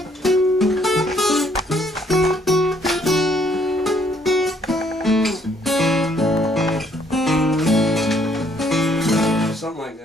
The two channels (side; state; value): both; normal; correlation 0.66